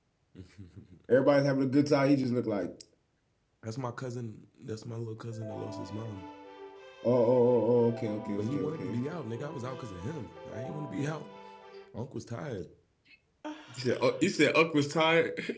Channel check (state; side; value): identical; both; correlation 1.00